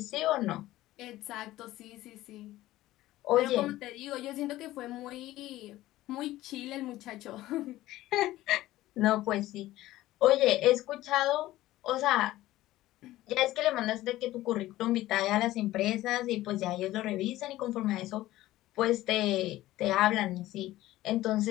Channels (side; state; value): right; quieter; 16.0 dB